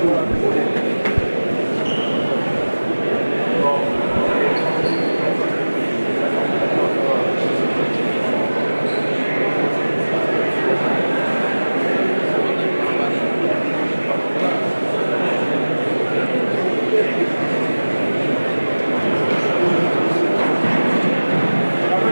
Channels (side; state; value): both; inverted; correlation -1.00